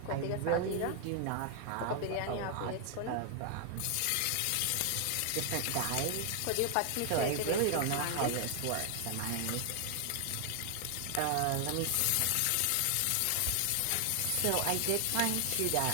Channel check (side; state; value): both; different; correlation 0.00